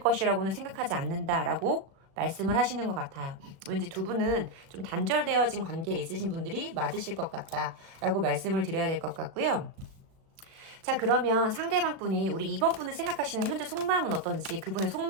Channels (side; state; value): left; late; 36 ms